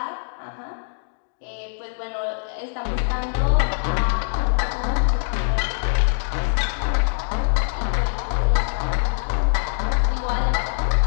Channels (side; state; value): right; silent; digital silence